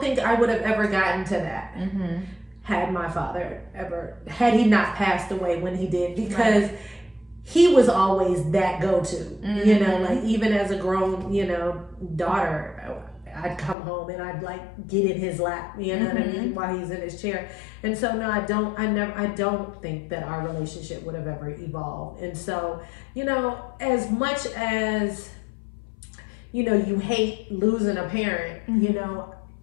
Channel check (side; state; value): right; drops out; at 13.8 s